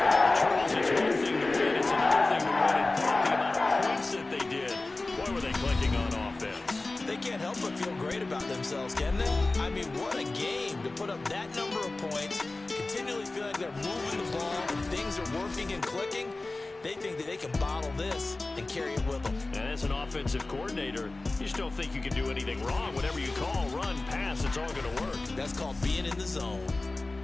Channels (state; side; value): quieter; right; 3.2 dB